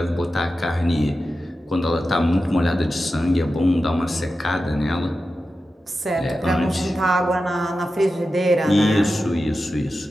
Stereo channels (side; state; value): both; normal; correlation 0.92